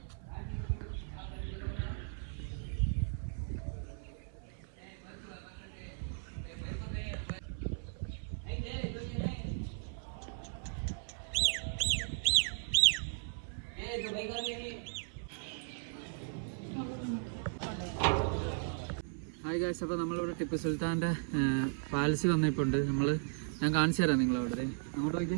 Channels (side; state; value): left; silent; 54 dB below the other